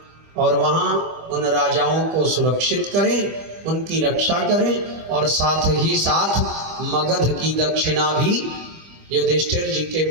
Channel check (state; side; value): late; left; 25 ms